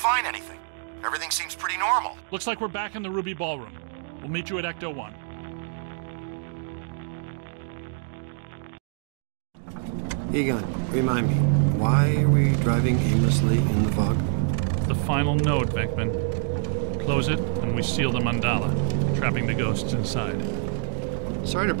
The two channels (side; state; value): left; silent; digital silence